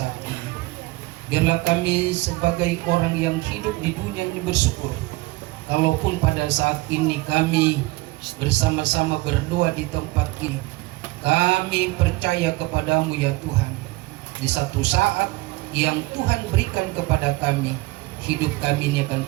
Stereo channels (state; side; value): quieter; left; 21.4 dB